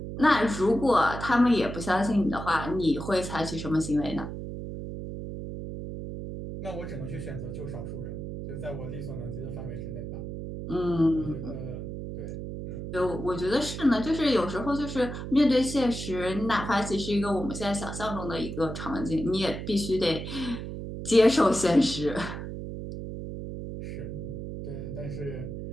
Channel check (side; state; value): right; noise; hum, 7 dB below the sound